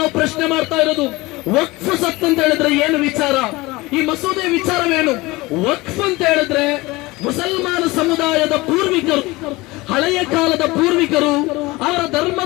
ಪ್ರಶ್ನೆ ಮಾಡ್ತಾ ಇರೋದು, ವಕ್ಫ್ ಸತ್ ಅಂತ ಹೇಳಿದ್ರೆ ಏನು ವಿಚಾರ, ಈ ಮಸೂದೆ ವಿಚಾರವೇನು? ವಕ್ಫ್ ಅಂತ ಹೇಳಿದ್ರೆ ಮುಸಲ್ಮಾನ ಸಮುದಾಯದ ಪೂರ್ವಿಕರು, ಹಳೆಯ ಕಾಲದ ಪೂರ್ವಿಕರು ಅವರ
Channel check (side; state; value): right; quieter; 21.7 dB